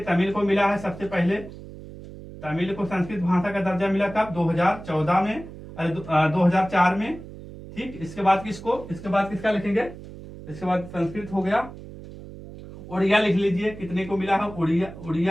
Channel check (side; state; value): right; noise; hum, 14 dB below the sound